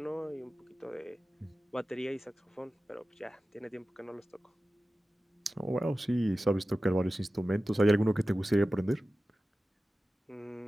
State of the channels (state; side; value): normal; both; correlation 0.95